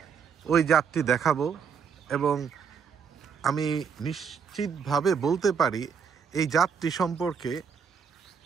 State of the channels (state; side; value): quieter; left; 6.6 dB